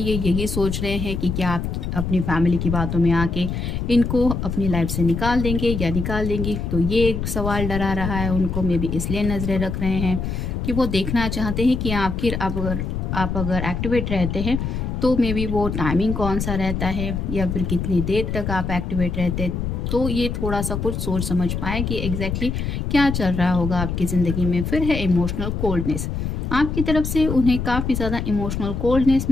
यही सोच रहे हैं कि क्या आप अपनी फैमिली की बातों में आके इनको अपनी लाइफ से निकाल देंगे या निकाल देंगी। तो ये एक सवाल डरा रहा है उनको, मे बी इसलिए नजरें रख रहे हैं कि वो देखना चाहते हैं कि आखिर आप अगर एक्टिवेट रहते हैं तो मे बी वो टाइमिंग कौन सा रहता है या फिर कितनी देर तक आप एक्टिवेट रहते हैं, तो ये थोड़ा सा कुछ सोच समझ पाए कि एग्जैक्टली क्या चल रहा होगा आपकी ज़िंदगी में। फिर है इमोशनल कोल्डनेस, आपकी तरफ से उन्हें काफ़ी ज़्यादा इमोशनल कोल्डनेस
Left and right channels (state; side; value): noise; left; rumble, 3 dB below the sound